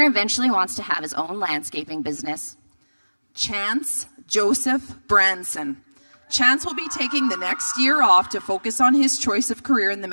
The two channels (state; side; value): inverted; both; correlation -1.00